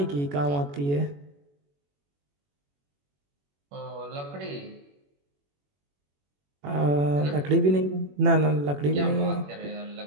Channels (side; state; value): left; late; 21 ms